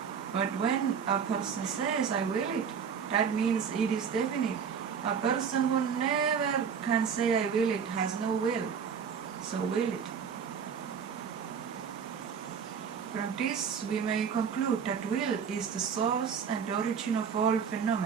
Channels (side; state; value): left; quieter; 6.9 dB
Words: But when a person says, I will it, that means it is definite. A person who never can say I will it has no will, so will it. From this we may conclude that will is the source and origin of all